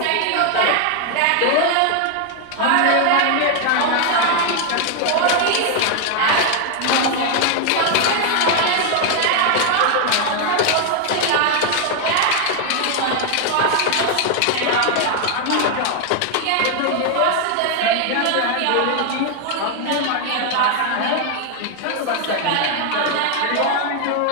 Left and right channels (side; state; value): both; different; correlation 0.00